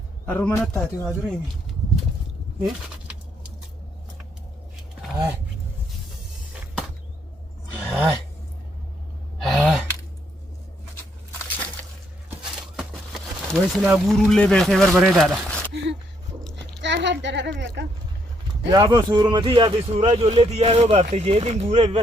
harruma nattaate waa dureemi. Way silaa guuruullee beekee barbareedaadha. Jaalaan darara beeka. Yaa boo suurumati yaa fi suuraa ijoolleeti yaa yoo baafte jeetiin guuree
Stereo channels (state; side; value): normal; both; correlation 0.72